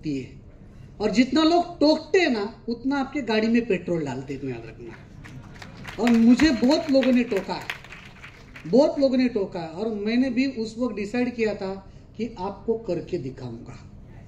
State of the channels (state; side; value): identical; both; correlation 1.00